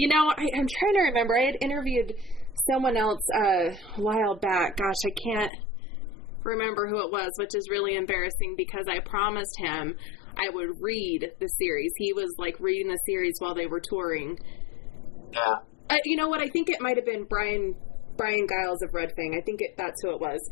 trying to remember. I had interviewed someone else a while back. Gosh, I can't remember who it was, which is really embarrassing, because I promised him I would read the series. He was like reading the series while they were touring. Yeah. You know what? I think it might have been Brian Giles of Red Fang. I think that's who it was.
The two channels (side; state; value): right; drops out; at 5.5 s